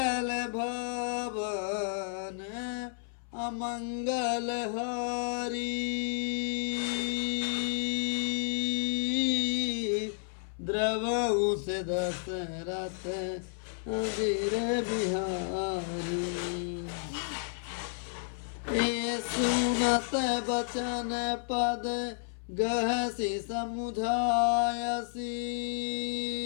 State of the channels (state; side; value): silent; right; 57 dB below the other